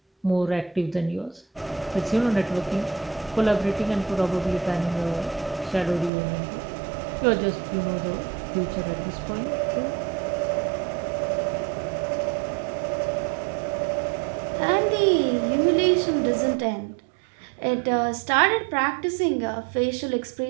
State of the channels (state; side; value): drops out; left; at 6.1 s